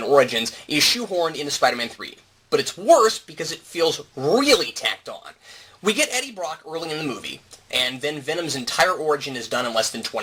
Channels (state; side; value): identical; both; correlation 1.00